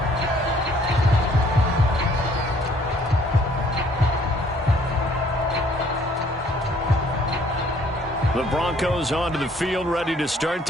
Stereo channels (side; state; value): both; normal; correlation 0.61